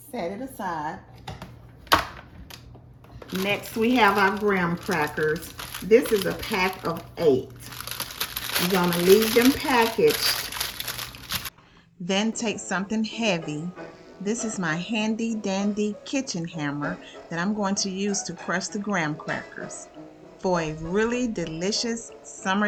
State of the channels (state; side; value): identical; both; correlation 1.00